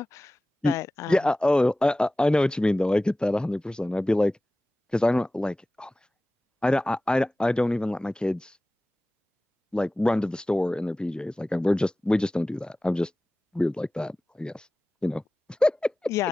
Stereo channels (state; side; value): normal; both; correlation 0.97